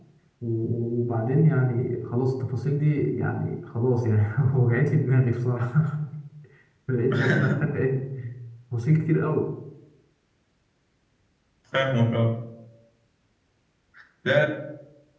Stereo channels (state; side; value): identical; both; correlation 1.00